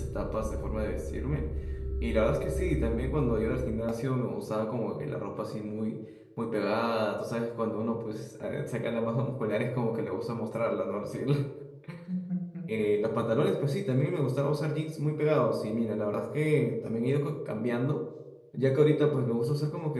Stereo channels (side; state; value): both; identical; correlation 1.00